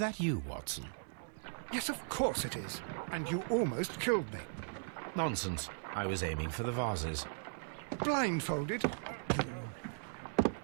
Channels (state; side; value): silent; left; digital silence